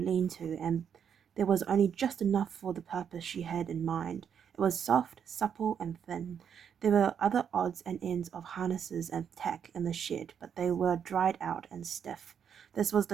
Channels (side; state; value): left; quieter; 7.9 dB